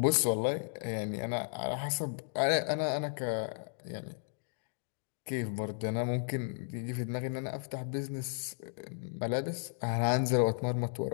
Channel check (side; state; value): right; silent; digital silence